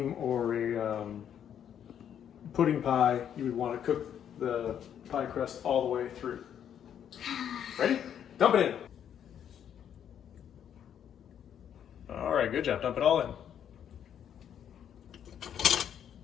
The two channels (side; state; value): right; quieter; 9.2 dB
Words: or a pudding pie, you would want to cook the pie crust all the way through. Ready? Dump it in. All right, good job. Dump it all in.